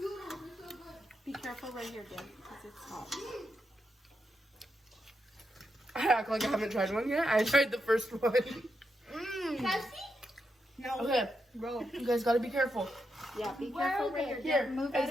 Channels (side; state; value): both; normal; correlation 0.84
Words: Be careful right here, Dev, because it's hot. I act like I haven't tried one yet. I tried the first one. Can I see? No. Okay, Roll. you guys gotta be careful. Yeah, be careful right here. Here, Dev, move out of